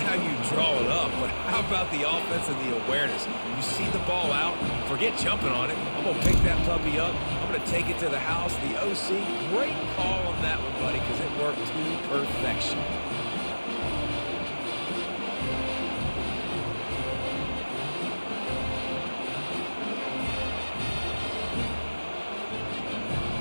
how you draw it up, but how about the offense and the awareness? You see the ball out, forget jumping on it. I'm going to pick that puppy up. I'm going to take it to the house. The OC, great call on that one, buddy, because it worked to perfection.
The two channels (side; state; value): both; inverted; correlation -1.00